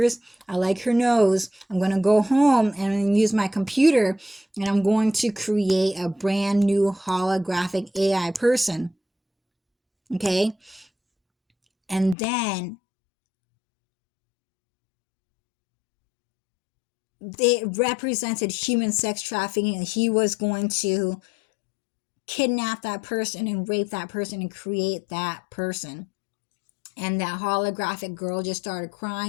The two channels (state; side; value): drops out; right; at 12.2 s